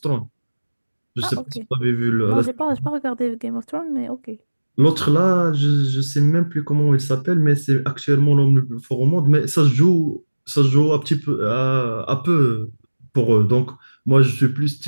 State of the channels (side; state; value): both; inverted; correlation -1.00